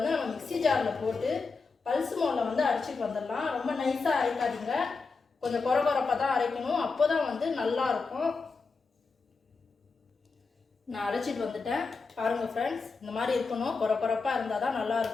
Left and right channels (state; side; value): quieter; right; 4.5 dB